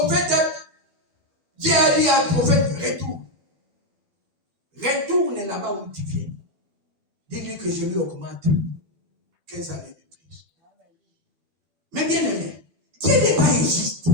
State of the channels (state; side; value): late; left; 12 ms